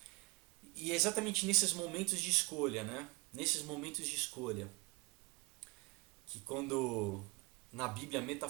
e é exatamente nesses momentos de escolha, né? Nesses momentos de escolha, que quando na Bíblia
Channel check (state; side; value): quieter; left; 26.8 dB